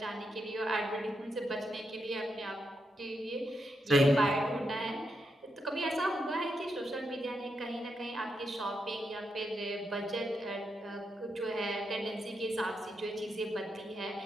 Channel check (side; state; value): both; normal; correlation 0.83